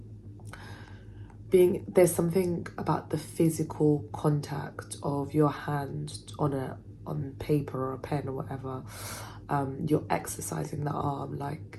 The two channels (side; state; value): both; identical; correlation 1.00